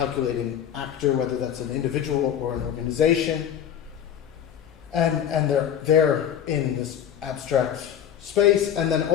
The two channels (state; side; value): quieter; right; 9.4 dB